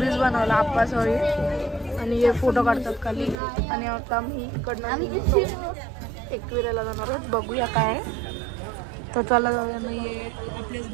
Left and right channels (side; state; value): left; drops out; at 3.4 s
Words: बनवला आप्पाच होळी आणि हे फोटो काढतात खाली. आणि आता आम्ही इकडनं एकविरेला जाणार आहोत. बघूया काय तर चला जाऊया. नाही आपलेच